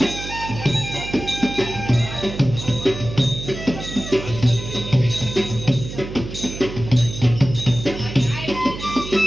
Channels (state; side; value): noise; right; hum, 9 dB below the sound